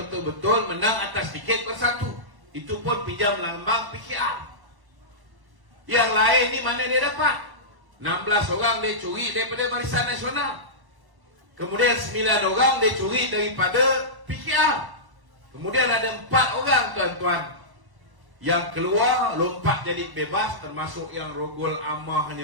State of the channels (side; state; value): left; late; 1.1 ms